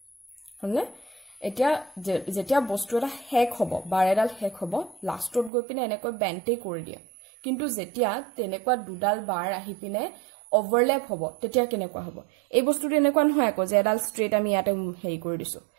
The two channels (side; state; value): left; drops out; at 5.5 s